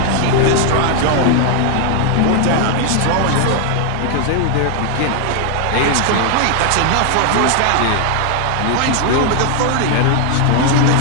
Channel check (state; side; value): different; both; correlation 0.00